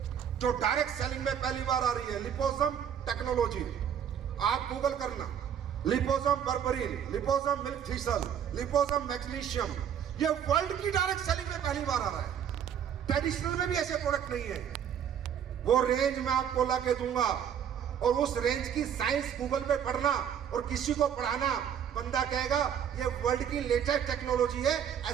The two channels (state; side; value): quieter; left; 8.8 dB